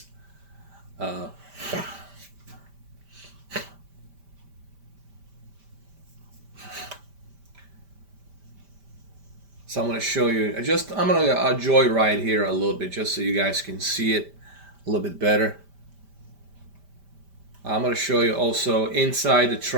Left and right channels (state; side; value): late; left; 5.1 ms